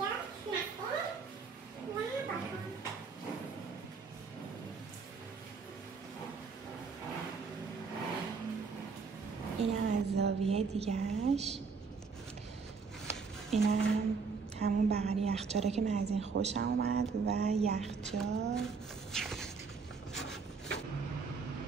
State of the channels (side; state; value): left; quieter; 5.1 dB